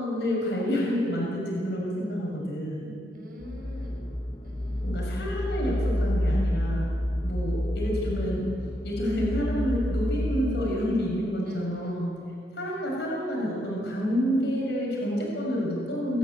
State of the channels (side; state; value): both; normal; correlation 0.78